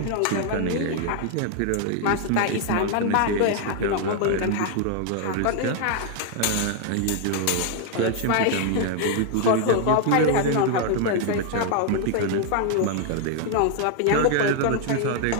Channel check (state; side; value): different; both; correlation 0.00